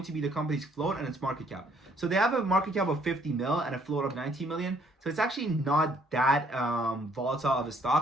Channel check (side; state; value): both; normal; correlation 0.64